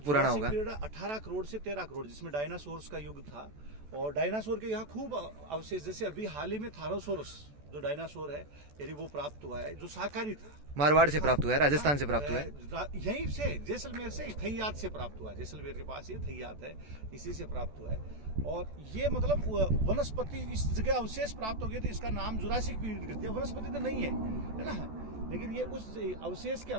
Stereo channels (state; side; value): late; left; 14 ms